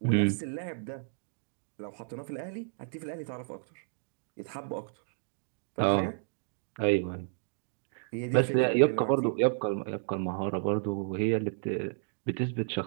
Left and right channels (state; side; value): silent; left; digital silence